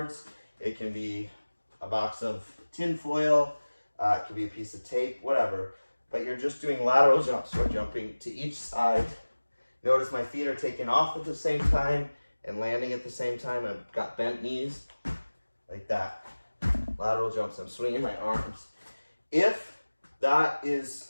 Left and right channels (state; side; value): inverted; both; correlation -1.00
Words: It can be a box of tin foil. It can be a piece of tape, whatever. But you're just doing lateral jumps. We're jumping to each side. Notice my feet are taking off at the same time and landing at the same time. I've got bent knees like that. Lateral jumps. I'm swinging my arms. If that